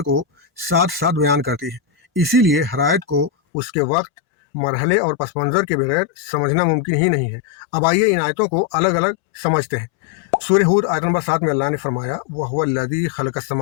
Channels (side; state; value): right; drops out; at 3.3 s